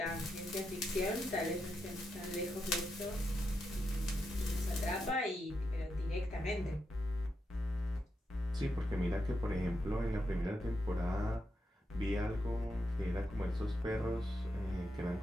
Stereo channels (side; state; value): both; normal; correlation 0.84